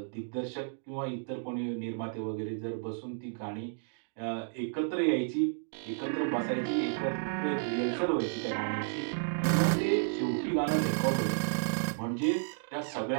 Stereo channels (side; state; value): left; silent; digital silence